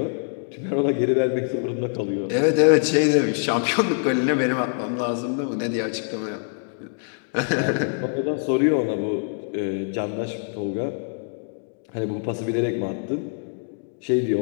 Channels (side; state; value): right; silent; digital silence